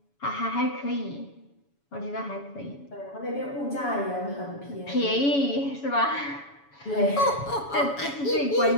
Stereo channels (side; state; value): right; late; 7.1 ms